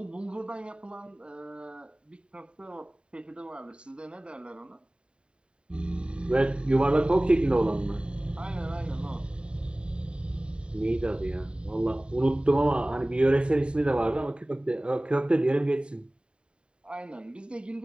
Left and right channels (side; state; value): left; late; 0.052 ms